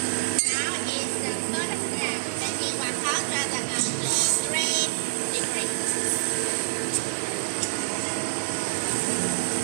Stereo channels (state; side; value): silent; left; 60 dB below the other